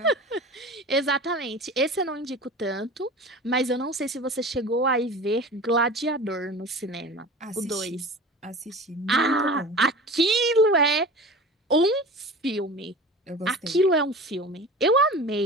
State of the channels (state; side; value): normal; both; correlation 0.35